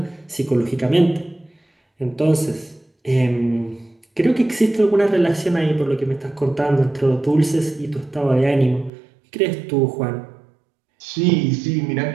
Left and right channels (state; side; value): drops out; left; at 8.9 s